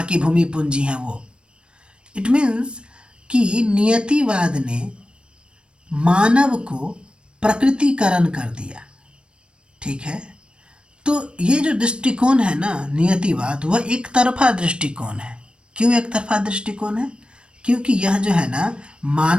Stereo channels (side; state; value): left; late; 0.056 ms